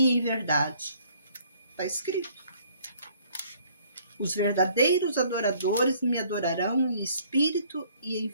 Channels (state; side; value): inverted; both; correlation -0.60